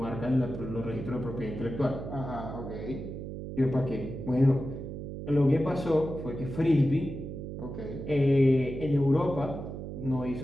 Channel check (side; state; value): right; noise; hum, 8 dB below the sound